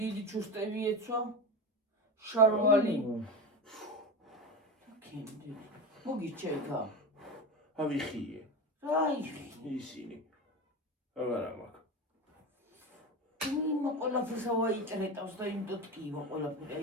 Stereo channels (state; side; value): normal; both; correlation 0.23